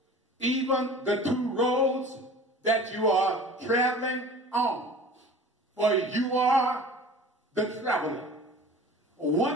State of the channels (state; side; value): normal; both; correlation 0.41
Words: Even the two roads that you are traveling on. For you are the traveler.